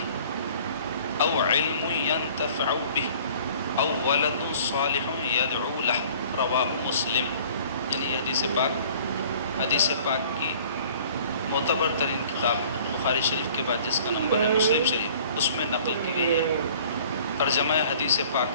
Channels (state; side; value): inverted; both; correlation -0.51